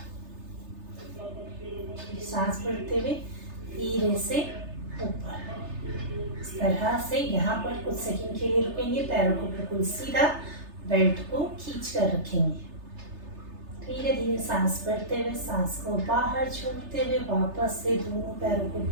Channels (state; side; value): late; left; 3.3 ms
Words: सांस भरते हुए धीरे से ऊपर। इस तरह से यहाँ पर कुछ सेकंड के लिए रुकेंगे, पैरों को बिल्कुल सीधा, बेल्ट को खींच कर रखेंगे। धीरे धीरे सांस भरते हुए सांस को बाहर छोड़ते हुए वापस से दोनों पैरों को